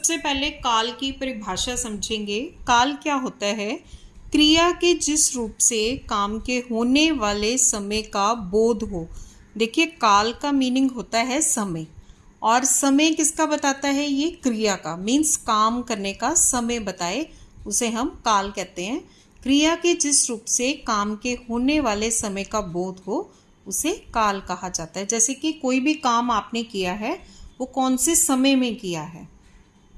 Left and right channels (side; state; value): both; identical; correlation 1.00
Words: पहले काल की परिभाषा समझेंगे। काल क्या होता है? क्रिया के जिस रूप से काम के होने वाले समय का बोध हो। देखिए, काल का मीनिंग होता है समय, और समय किसका बताता है? ये क्रिया का, मीन्स काम करने का समय बताए उसे हम काल कहते हैं। क्रिया के जिस रूप से काम के होने वाले समय का बोध हो उसे काल कहा जाता है। जैसे कि कोई भी काम आपने किया है वो कौन से समय में किया है,